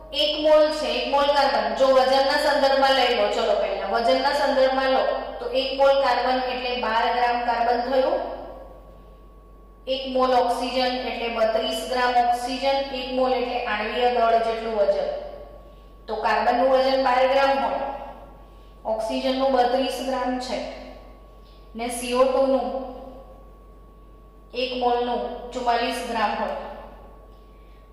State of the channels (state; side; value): identical; both; correlation 1.00